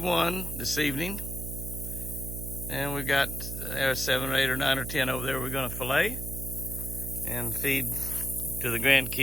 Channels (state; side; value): noise; right; hum, 6 dB below the sound